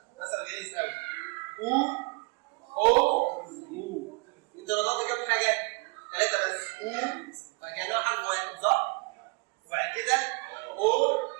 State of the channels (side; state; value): left; quieter; 29.7 dB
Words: او انت نطقت كام حاجه؟ 3 بس. او فكانها حرف واحد صح؟ وبعد كده او